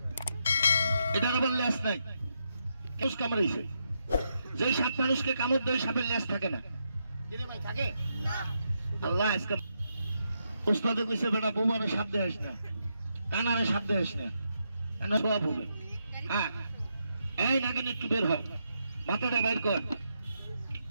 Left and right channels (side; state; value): both; inverted; correlation -0.82